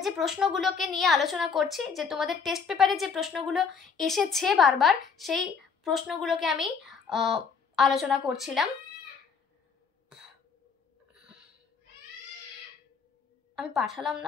যে প্রশ্নগুলোকে নিয়ে আলোচনা করছি, যে তোমাদের টেস্ট পেপারে যে প্রশ্নগুলো এসেছে বারবার, সেই প্রশ্নগুলোকে আমি আলোচনা করছিলাম। আমি পাঠালাম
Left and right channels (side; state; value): right; quieter; 5.8 dB